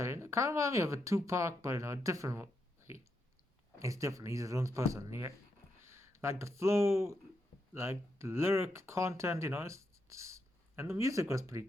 it kind of reminds me of a Tupac, but in a different way. He's different. He's his own person. Yeah. Like the flow, like the lyric content, you know, and the music was pretty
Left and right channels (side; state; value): both; normal; correlation 0.82